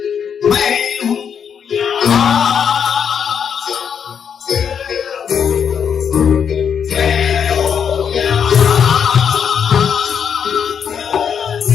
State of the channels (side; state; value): right; quieter; 7.5 dB